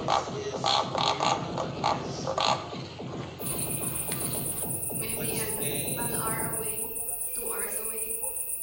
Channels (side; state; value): both; identical; correlation 1.00